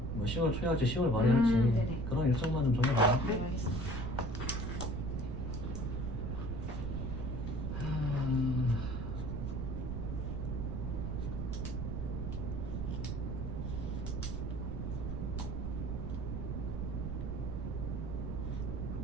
뭐 10월 초에 할지 10월 말에 할지 네네. 그런 일정만 좀 정해봐요. 네, 알겠습니다.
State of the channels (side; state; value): right; noise; rumble, 3 dB below the sound